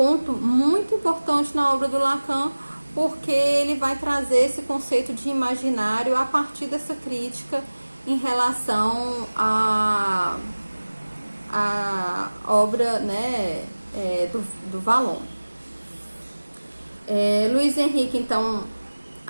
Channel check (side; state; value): both; inverted; correlation -1.00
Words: muito importante na obra do Lacan, porque ele vai trazer esse conceito de imaginário a partir dessa crítica em relação à obra, né, do Vallon. Luiz Henrique, então,